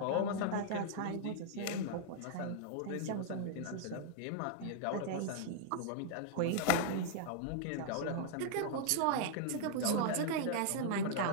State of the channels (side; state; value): both; different; correlation -0.01